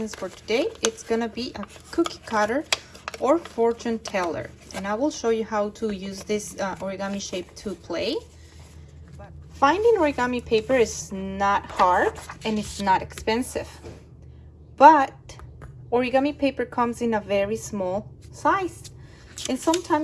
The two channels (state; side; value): identical; both; correlation 1.00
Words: for today. It's gonna be a cookie cutter or fortune teller, and I will show you how to use this origami shape to play. Finding origami paper is not hard and it's not expensive, but origami paper comes in a very small size, and